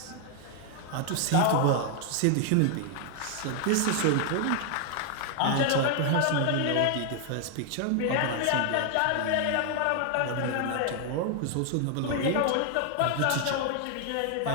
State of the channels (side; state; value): both; different; correlation 0.00